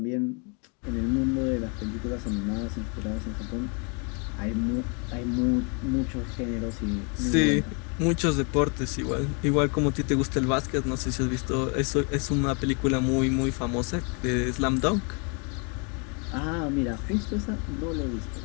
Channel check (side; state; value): right; quieter; 35.3 dB